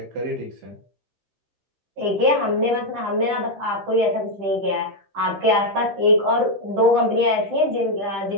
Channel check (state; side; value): late; left; 15 ms